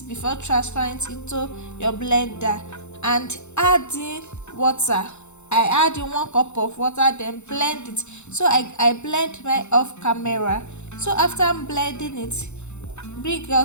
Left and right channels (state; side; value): late; right; 0.82 ms